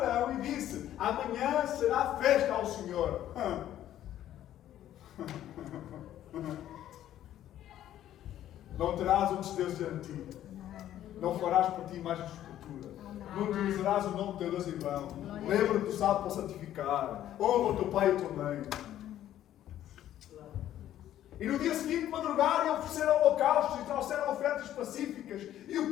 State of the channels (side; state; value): right; quieter; 12.1 dB